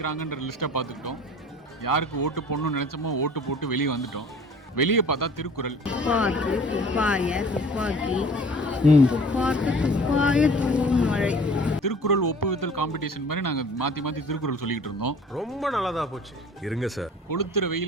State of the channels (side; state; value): both; normal; correlation 0.47